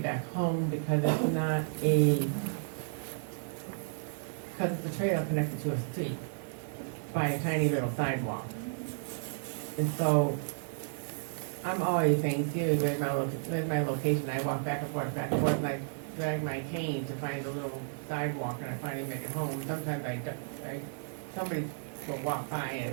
home because it's not because it's a trail connected to a street by a tiny little sidewalk. And so I'm always saying, too, where's my location? I walk back and forth, and I drag my cane to find a little sidewalk, and I finally make it home. Sometimes somebody will walk by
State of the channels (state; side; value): silent; left; digital silence